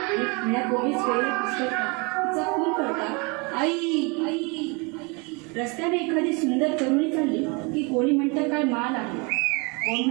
आणि पुण्यापूर्वीच वेळेला पुस्तकात तिचा खून करता. आई आई रस्त्याने एखादी सुंदर तरुणी चालली की कोणी म्हणतं काय माल आहे, कोण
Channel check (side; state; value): left; quieter; 30.4 dB